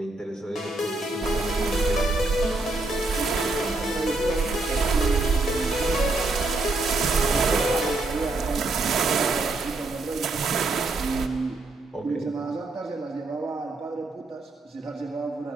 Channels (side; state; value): left; quieter; 3.1 dB